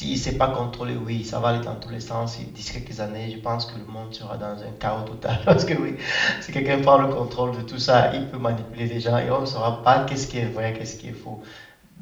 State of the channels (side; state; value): both; identical; correlation 1.00